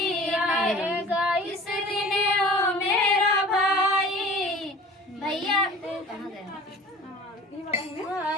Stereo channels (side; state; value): both; normal; correlation 0.43